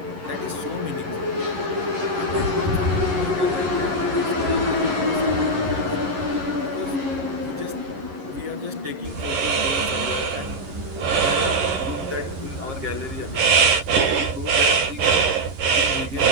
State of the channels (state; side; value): late; left; 10 ms